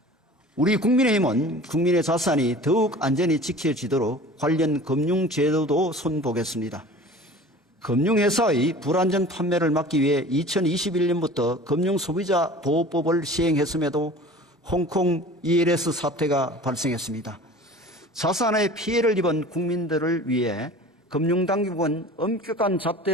우리 국민의힘은 국민의 자산이 더욱 안전히 지켜지도록 관련 금융제도도 손보겠습니다. 금융회사의 불안전 판매를 막기 위해 2021년부터 금융소비자보호법을 시행했음에도 홍콩 ELS 사태가 발생했습니다. 자산에 피해를 입은 국민들을 위해 금융당국은 엄격한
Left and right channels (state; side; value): normal; both; correlation 0.42